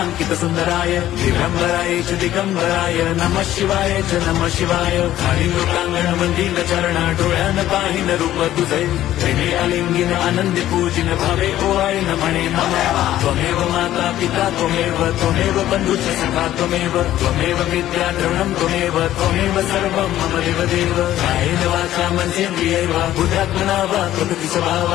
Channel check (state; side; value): quieter; right; 13.2 dB